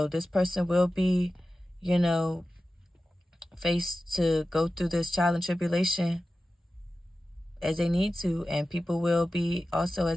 this person will be, you know, faced to go through this trial and tribulation as they need to, and people will be also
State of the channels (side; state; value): both; normal; correlation 0.95